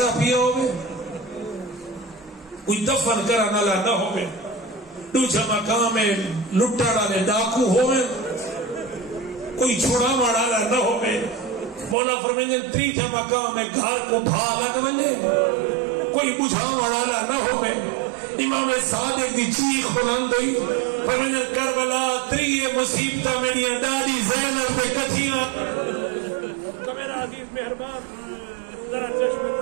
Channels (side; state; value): left; drops out; at 12.0 s